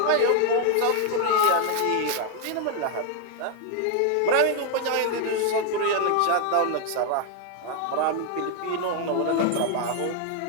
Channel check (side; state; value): both; different; correlation 0.00